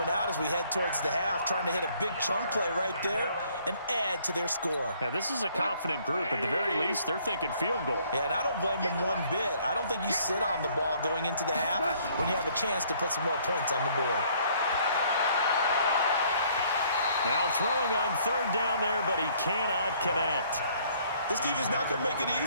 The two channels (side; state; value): both; inverted; correlation -0.62